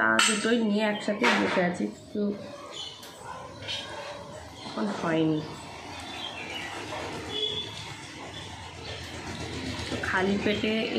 দুটোই নিয়ে একসাথে বসে আছি, কিন্তু এখন হয়নি। তো খালি পেটে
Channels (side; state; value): both; identical; correlation 1.00